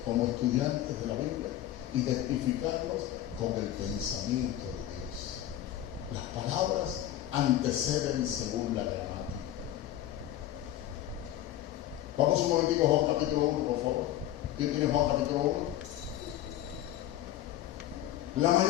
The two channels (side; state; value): right; quieter; 12.8 dB